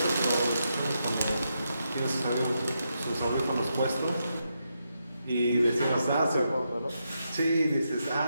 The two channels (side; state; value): both; inverted; correlation -0.83